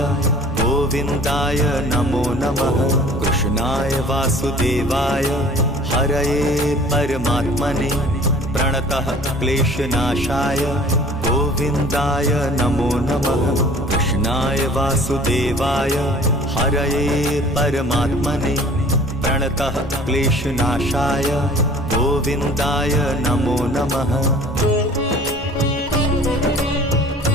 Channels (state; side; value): normal; both; correlation 0.49